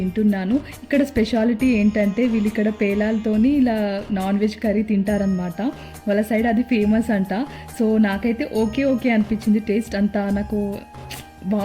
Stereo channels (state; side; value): identical; both; correlation 1.00